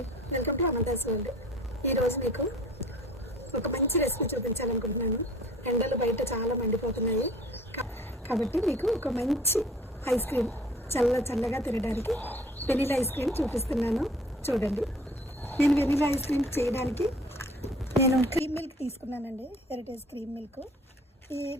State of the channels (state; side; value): normal; both; correlation 0.50